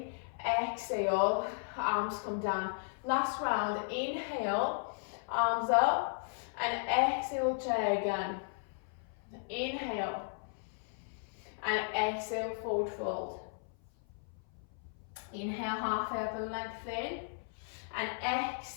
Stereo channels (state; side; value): silent; right; 54 dB below the other